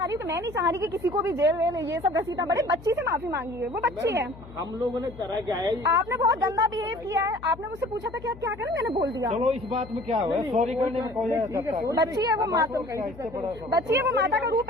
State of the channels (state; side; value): noise; left; hum, 18 dB below the sound